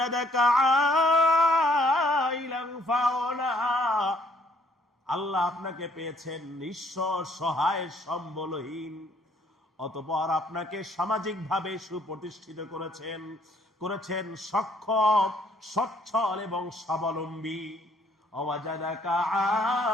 عائلا فأغنى, আল্লাহ আপনাকে পেয়েছেন নিঃস্ব সহায় সম্বলহীন, অতঃপর আপনাকে সামাজিকভাবে সুপ্রতিষ্ঠিত করেছেন সক্ষম, সচ্ছল এবং স্বাবলম্বী। ওয়াজাদাকা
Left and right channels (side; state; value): both; normal; correlation 0.64